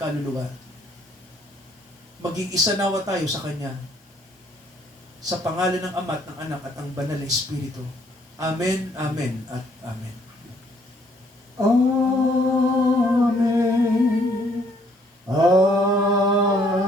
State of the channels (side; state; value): both; normal; correlation 0.65